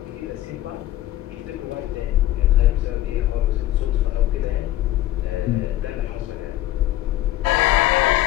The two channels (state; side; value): quieter; right; 14.4 dB